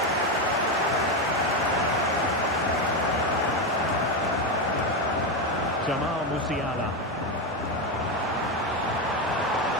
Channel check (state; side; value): normal; both; correlation 0.11